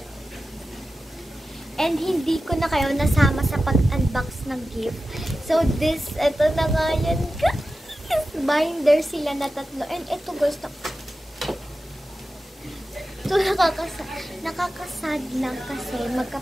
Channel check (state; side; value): normal; both; correlation 0.93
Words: And hindi ko na kayo nasama sa pag-unbox ng gift. So ito na nga yan guys. Binder sila na tatlo. And ito guys, ito nakakasad lang kasi